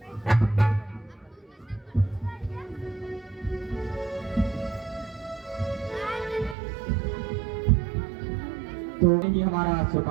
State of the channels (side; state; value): left; drops out; at 6.6 s